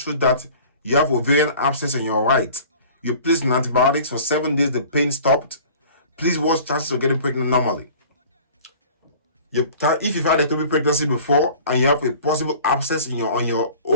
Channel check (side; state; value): both; inverted; correlation -0.45